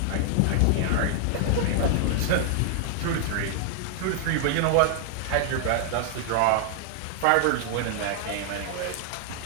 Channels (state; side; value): different; both; correlation -0.01